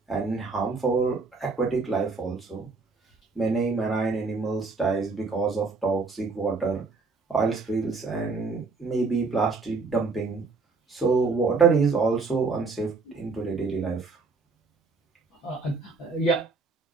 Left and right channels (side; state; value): left; quieter; 4.2 dB